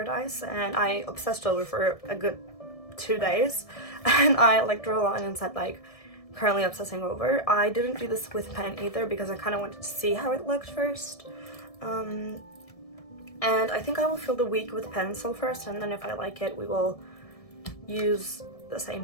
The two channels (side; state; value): right; late; 1.7 ms